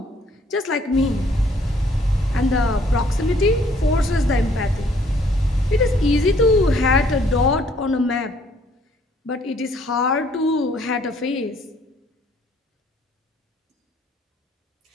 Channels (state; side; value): normal; both; correlation 0.63